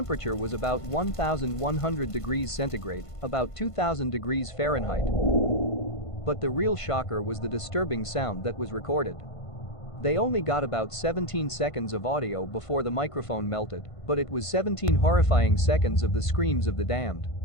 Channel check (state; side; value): late; right; 1.5 ms